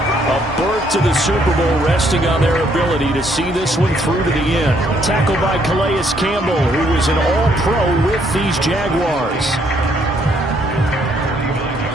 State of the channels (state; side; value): normal; both; correlation 0.69